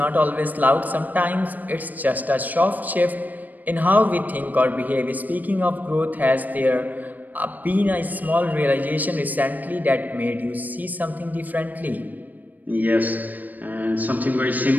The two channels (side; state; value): left; late; 0.083 ms